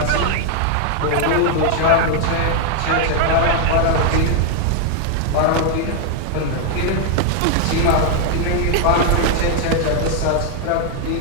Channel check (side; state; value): both; different; correlation 0.00